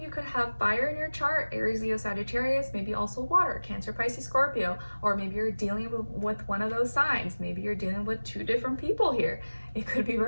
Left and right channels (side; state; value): both; inverted; correlation -1.00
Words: could have fire in your chart, Aries, Leo, Sagittarius, maybe also water, Cancer, Pisces, Scorpio, or maybe you're dealing with one of those signs. Maybe you're dealing with 2 different people here. It could be